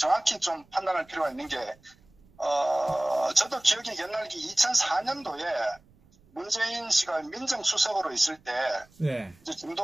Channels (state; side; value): noise; right; rumble, 29 dB below the sound